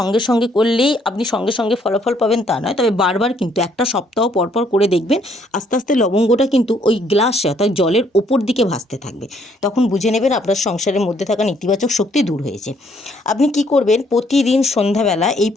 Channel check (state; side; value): normal; both; correlation 0.67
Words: সঙ্গে করলেই আপনি সঙ্গে সঙ্গে ফলাফল পাবেন তা নয়, তবে বারবার কিন্তু একটা সপ্তাহ পরপর করে দেখবেন আস্তে আস্তে লবঙ্গটা কিন্তু ওই গ্লাসে অর্থাৎ জলের ওপর দিকে ভাসতে থাকবে। তখন বুঝে নেবেন আপনার সংসারের মধ্যে থাকা নেতিবাচক শক্তি দূর হয়েছে। আপনি কি করবেন, প্রতিদিন সন্ধ্যাবেলা এই